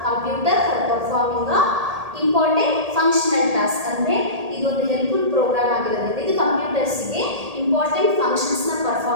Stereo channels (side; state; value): left; late; 1.8 ms